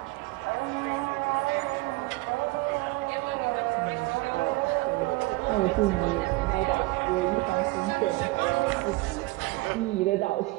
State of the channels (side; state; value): left; quieter; 21.8 dB